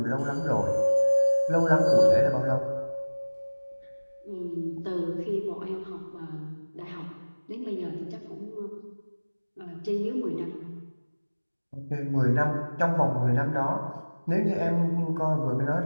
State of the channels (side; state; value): both; inverted; correlation -1.00